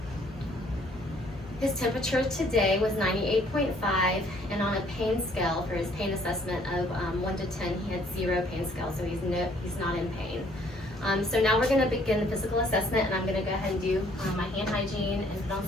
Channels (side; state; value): both; normal; correlation 0.62